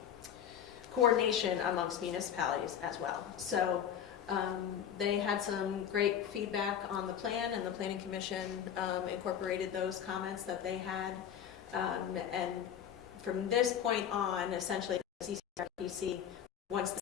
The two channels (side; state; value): right; quieter; 9.2 dB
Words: coordination amongst municipalities as well. So they had some great feedback on the plan, and the Planning Commission incorporated those comments that they had. And from this point on, essentially, the CCRPC, once the